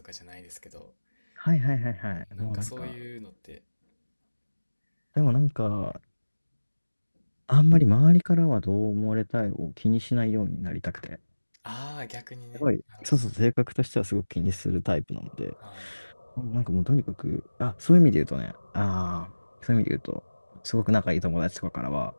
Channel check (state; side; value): inverted; both; correlation -1.00